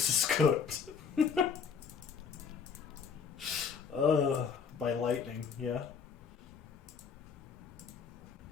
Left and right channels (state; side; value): quieter; right; 6.3 dB